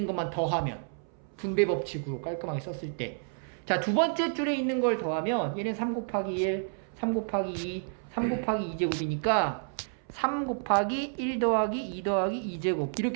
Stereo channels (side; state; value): left; silent; 58 dB below the other